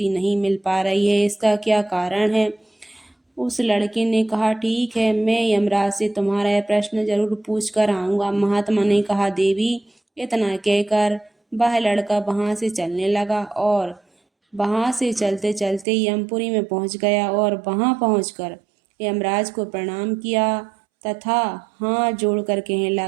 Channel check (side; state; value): left; drops out; at 15.9 s